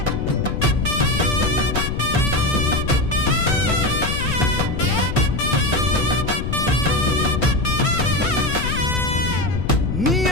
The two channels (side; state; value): left; noise; rumble, 2 dB below the sound